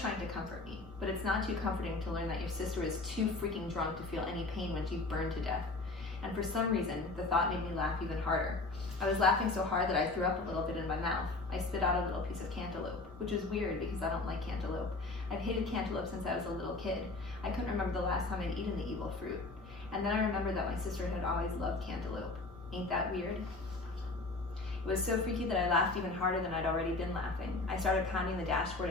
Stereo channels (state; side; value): quieter; right; 3.3 dB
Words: to comfort me, but it's not too comforting to learn that your sister is too freaking drunk to feel any pain when she burned to death. And for some reason, the thought made me laugh even harder. I was laughing so hard that I threw up a little bit in my mouth. I spit out a little piece of cantaloupe, which was weird because I don't like cantaloupe. I've hated cantaloupe since I was a little kid. I couldn't remember the last time I'd eaten the evil fruit. And then I remembered that my sister had always loved cantaloupe. Ain't that weird? It was so freaky that I laughed even harder than I'd already been laughing. I started pounding the dashboard